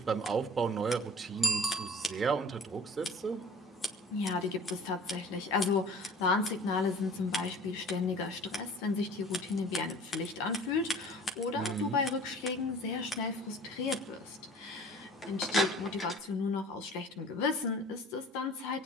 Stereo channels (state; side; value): normal; both; correlation 0.45